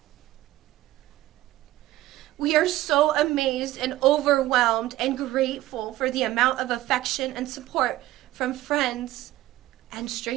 We are so amazed and overwhelmed and grateful for the amount of affection and support from friends and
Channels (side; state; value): left; quieter; 15.8 dB